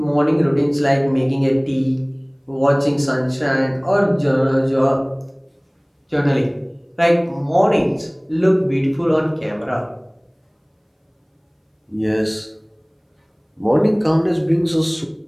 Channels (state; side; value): identical; both; correlation 1.00